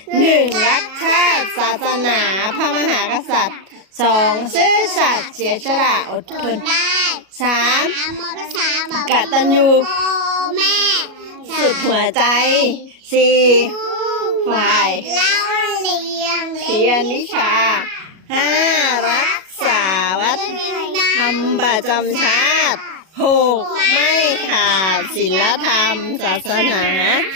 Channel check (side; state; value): left; late; 37 ms